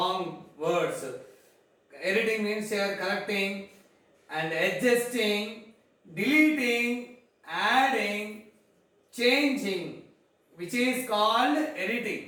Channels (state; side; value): identical; both; correlation 1.00